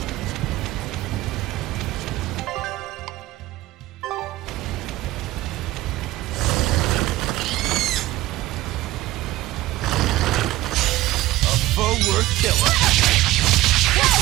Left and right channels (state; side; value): quieter; left; 16.8 dB